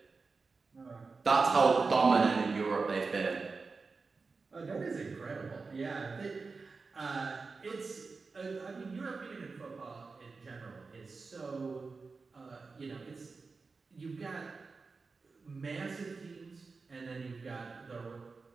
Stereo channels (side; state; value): left; quieter; 4.3 dB